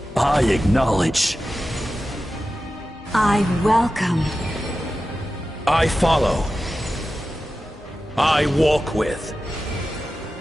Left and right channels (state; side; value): normal; both; correlation 0.93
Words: I acknowledge. I welcome. I follow. I walk with.